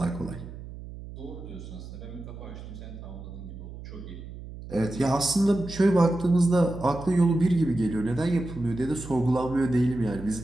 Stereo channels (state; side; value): noise; right; hum, 13 dB below the sound